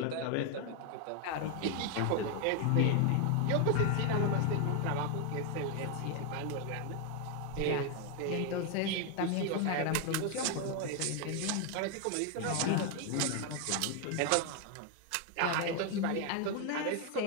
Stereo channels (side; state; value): both; different; correlation 0.01